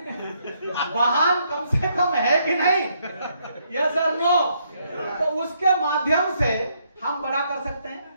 वाहन कम से कम है कि नहीं? यस और नो? तो उसके माध्यम से हम बड़ा कर सकते हैं।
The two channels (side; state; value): both; inverted; correlation -0.73